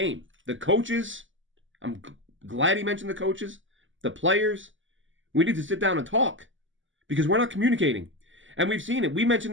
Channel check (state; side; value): late; left; 0.56 ms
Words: the coaches, I'm glad he mentioned the coaches, the players, we need to sit down and talk because we're not communicating. And we've seen it. We